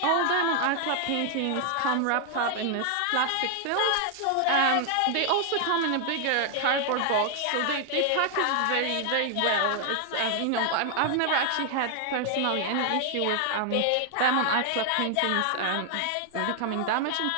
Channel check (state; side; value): different; both; correlation 0.00